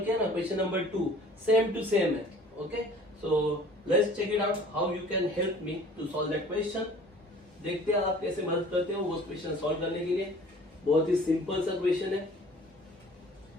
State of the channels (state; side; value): normal; both; correlation 0.49